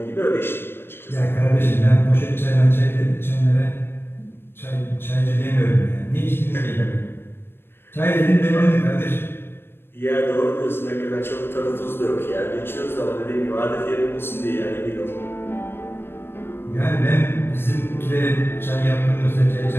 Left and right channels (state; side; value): late; right; 0.11 ms